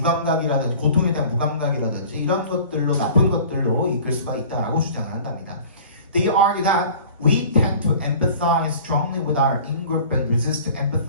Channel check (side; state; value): both; inverted; correlation -0.45